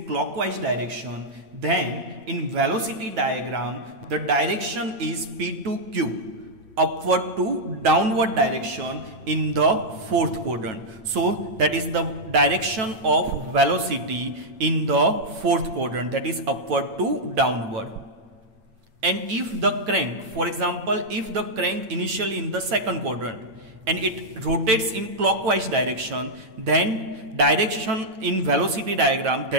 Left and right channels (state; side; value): late; left; 9.1 ms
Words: clockwise direction, then in velocity diagram the direction is P to Q, upward to downward direction in the fourth quadrant. So that is the direction of velocity in the fourth quadrant, that is upward to downward. And if the crank, for example, if the crank initially in the second quadrant and it rotates in clockwise direction, then direction in velocity diagram